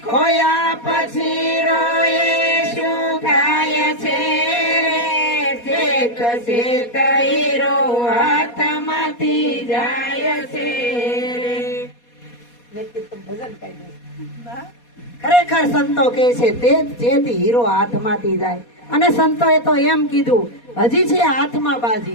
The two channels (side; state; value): right; late; 4.2 ms